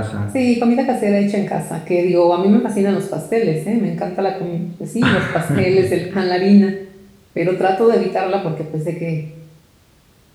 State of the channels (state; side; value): identical; both; correlation 1.00